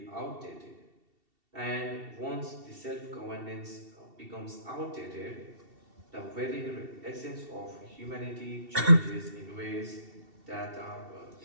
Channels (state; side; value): late; left; 2.7 ms